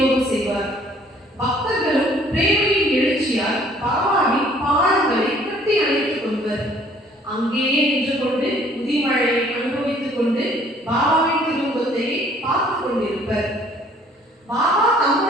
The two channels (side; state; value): both; normal; correlation 0.58